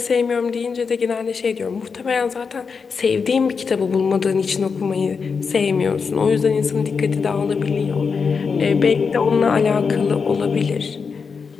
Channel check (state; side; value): quieter; right; 5.4 dB